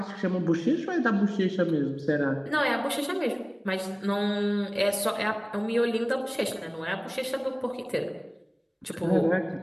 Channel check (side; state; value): both; identical; correlation 1.00